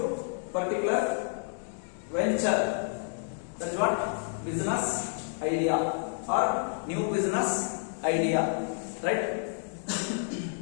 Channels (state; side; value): silent; right; digital silence